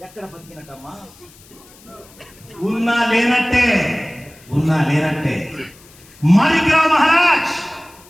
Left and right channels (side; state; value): left; noise; hiss, 25 dB below the sound